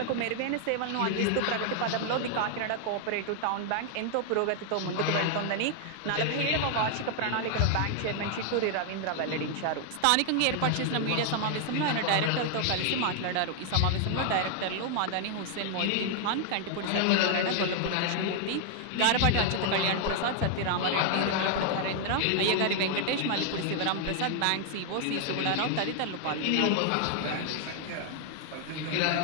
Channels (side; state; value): both; different; correlation 0.00